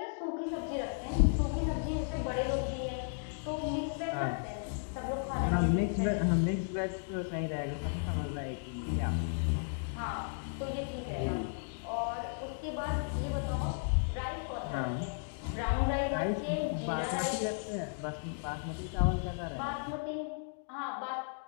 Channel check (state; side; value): silent; right; digital silence